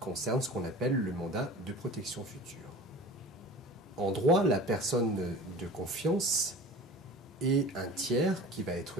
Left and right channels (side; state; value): both; normal; correlation 0.38